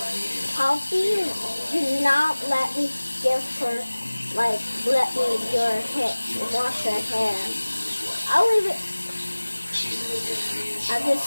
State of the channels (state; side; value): inverted; both; correlation -1.00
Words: needed Poppy, do not let me give her, like, let me your hair, wash her hair. I'll leave it. She's looking at me and I